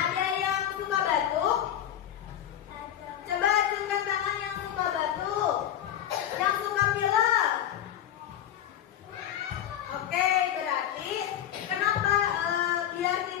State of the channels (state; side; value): quieter; right; 10.7 dB